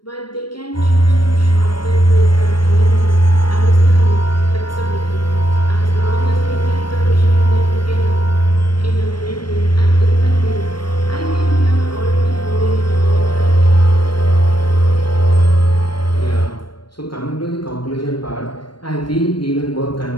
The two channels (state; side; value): late; right; 0.72 ms